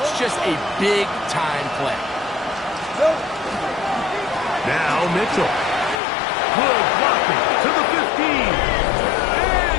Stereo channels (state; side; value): drops out; right; at 6.0 s